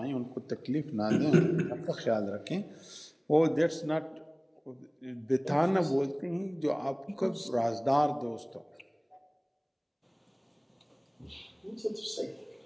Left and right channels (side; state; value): both; identical; correlation 1.00